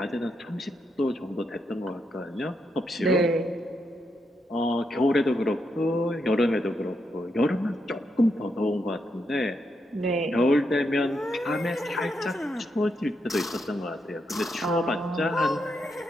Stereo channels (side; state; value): both; normal; correlation 0.82